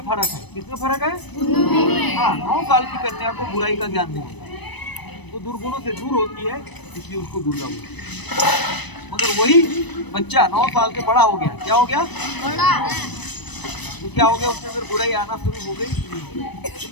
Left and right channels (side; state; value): right; late; 1.0 ms